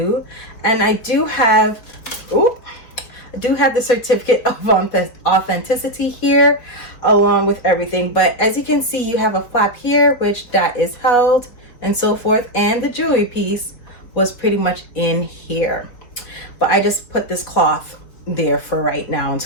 And I do have the certificate of authenticity here along with everything. But as you can see, you have a flap here which that is held and so forth, and the jewelry piece was pretty much in here, but I just put this cloth there for right now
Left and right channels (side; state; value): right; late; 4.6 ms